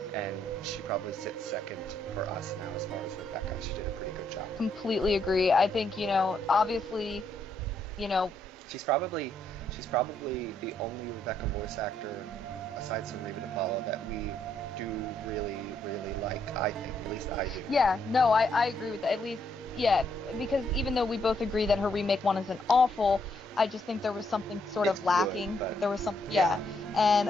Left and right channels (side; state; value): both; normal; correlation 0.74